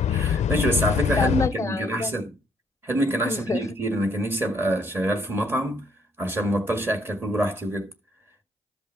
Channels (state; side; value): normal; both; correlation 0.68